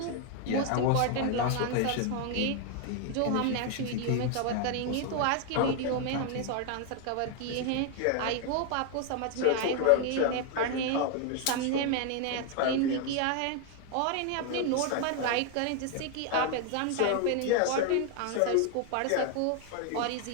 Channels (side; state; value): both; different; correlation 0.01